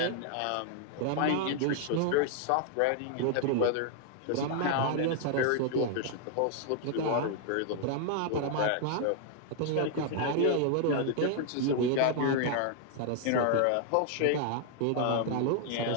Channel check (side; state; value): both; different; correlation 0.00